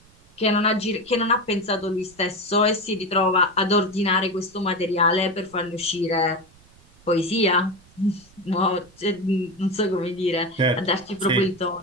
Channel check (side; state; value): right; noise; rumble, 28 dB below the sound